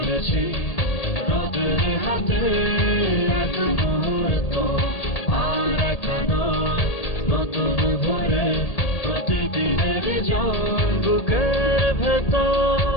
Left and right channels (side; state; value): right; late; 1.8 ms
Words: রোদের হাতে, এক মুহূর্ত আর একানো নতুন ভরে প্রতিদিনের জন। বুকের ভেতর